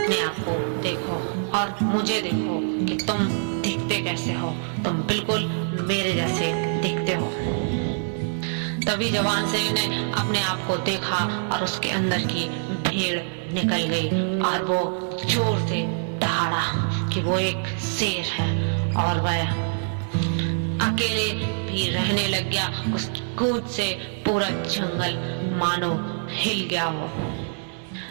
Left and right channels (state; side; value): silent; left; digital silence